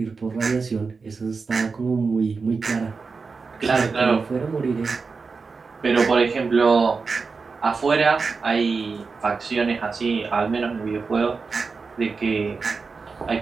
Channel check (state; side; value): quieter; left; 4.7 dB